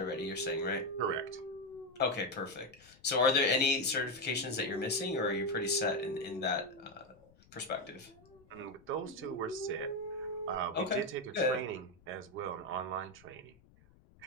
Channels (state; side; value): noise; left; rumble, 27 dB below the sound